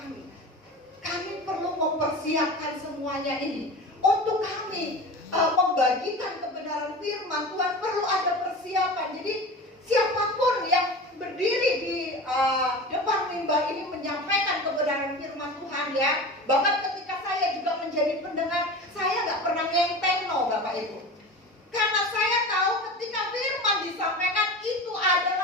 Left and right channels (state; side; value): normal; both; correlation 0.32